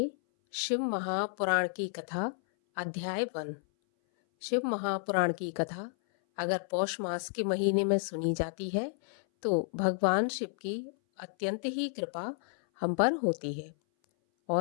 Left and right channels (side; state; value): right; silent; 57 dB below the other